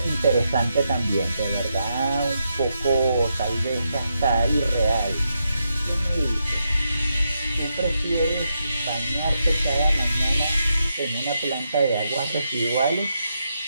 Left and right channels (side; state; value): both; inverted; correlation -0.83